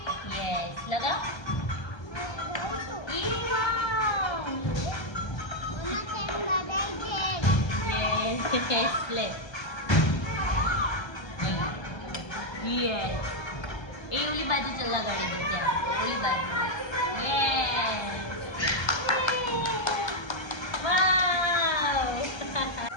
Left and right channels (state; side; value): late; right; 1.3 ms